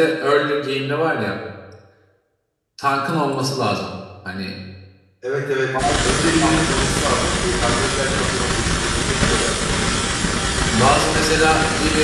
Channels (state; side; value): identical; both; correlation 1.00